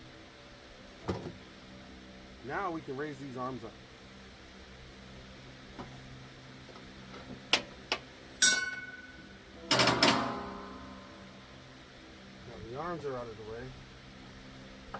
Now we can raise these arms up. Now the arms are out of the way.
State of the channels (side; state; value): both; identical; correlation 1.00